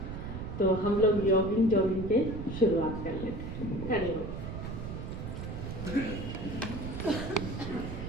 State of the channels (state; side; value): noise; right; rumble, 7 dB below the sound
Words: तो हम लोग योगिन जोगिन के शुरुआत कर लेते हैं। हरिओम।